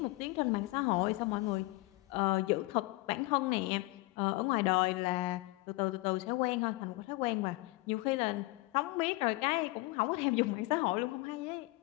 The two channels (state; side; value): quieter; right; 22.3 dB